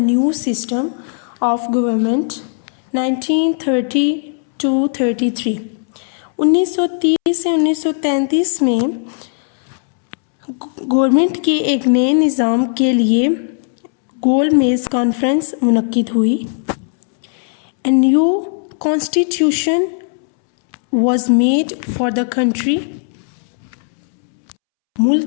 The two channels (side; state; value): right; silent; 68 dB below the other